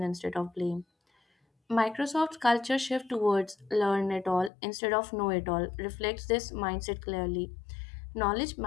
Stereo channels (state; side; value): drops out; right; at 4.5 s